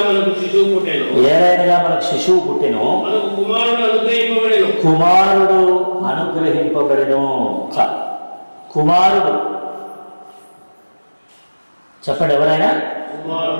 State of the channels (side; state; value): both; inverted; correlation -1.00